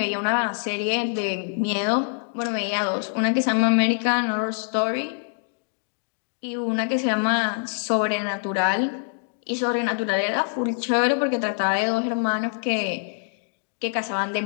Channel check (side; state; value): right; silent; digital silence